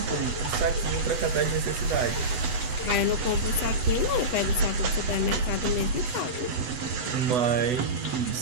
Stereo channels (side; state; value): left; late; 8.0 ms